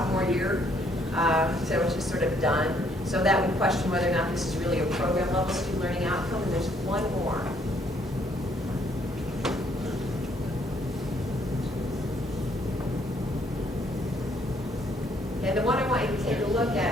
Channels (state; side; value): normal; both; correlation 0.67